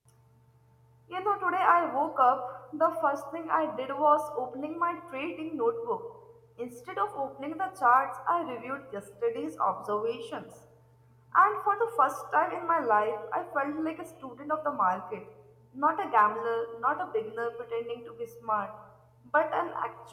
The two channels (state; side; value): identical; both; correlation 1.00